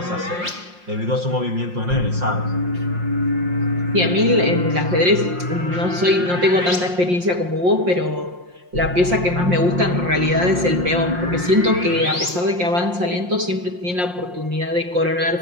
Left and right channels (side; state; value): left; late; 5.6 ms